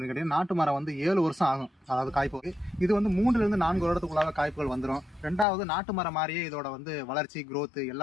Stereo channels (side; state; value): right; drops out; at 5.5 s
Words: கேட்டீங்கன்னா, நாட்டு மரம் வந்து 7 வருஷம் ஆகும், அதாவது காய்ப்புக்கு. இது வந்து 3 to 4 வருடத்துக்குள்ளாக காய்ப்புகள் வந்துடும். ரெண்டாவது, நாட்டு மரம் மாதிரியே இதோட வந்து வளர்ச்சி growth